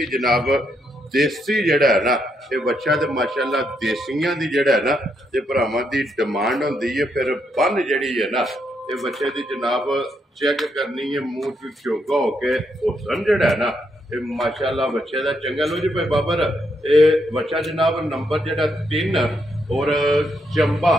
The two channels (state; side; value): normal; both; correlation 0.78